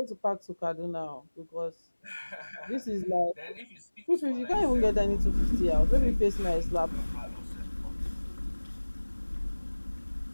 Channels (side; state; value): both; inverted; correlation -1.00